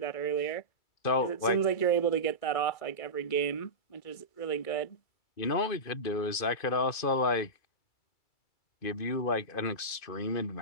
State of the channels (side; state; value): right; late; 2.5 ms